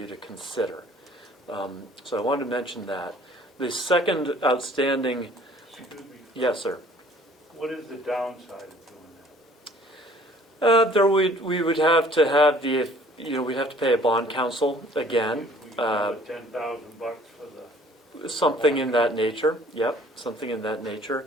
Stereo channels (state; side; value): normal; both; correlation 0.55